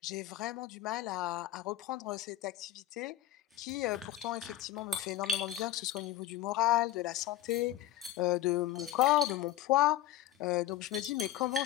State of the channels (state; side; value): quieter; right; 13.2 dB